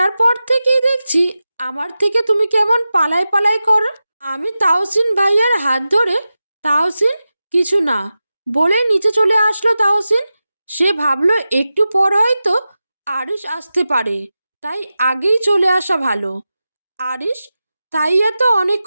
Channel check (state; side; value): inverted; both; correlation -0.93